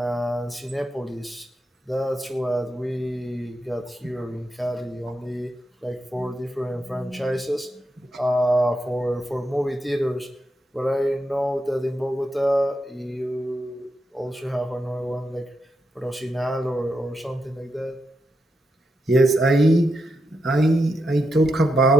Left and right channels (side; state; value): both; normal; correlation 0.85